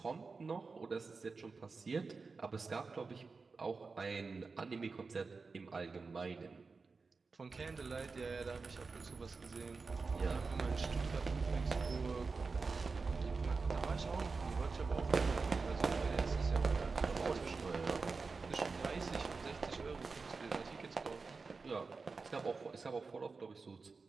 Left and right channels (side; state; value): left; quieter; 4.4 dB